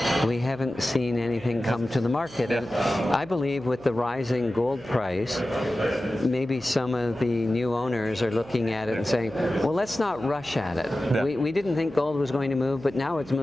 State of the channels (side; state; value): right; noise; hum, 21 dB below the sound